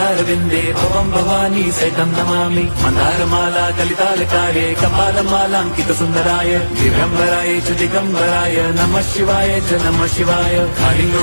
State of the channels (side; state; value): both; inverted; correlation -1.00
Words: भवं भवानी सहितं नमामि। मन्दारमाला कलितालकारे कपालमालाङ्कितसुन्दराय दिव्यम्बराय च दिगम्बराय नमः शिवाय च नमः शिवाय।